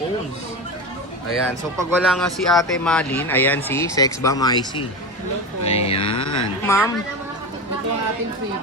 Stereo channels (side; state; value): both; normal; correlation 0.23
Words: Ayan, so pag wala nga si Ate Malin, ayan si Sexbomb IC. Hello po. Ayan. Ma'am, Ito ang ating